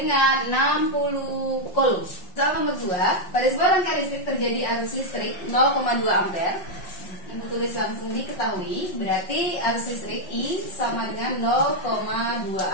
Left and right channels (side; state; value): right; late; 5.6 ms